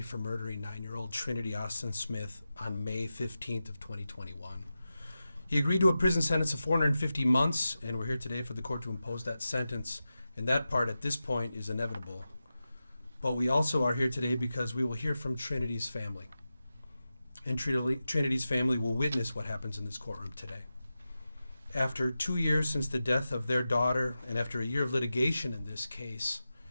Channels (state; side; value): inverted; both; correlation -0.93